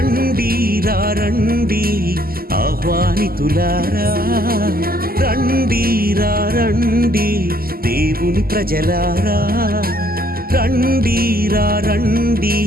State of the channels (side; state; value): left; late; 0.43 ms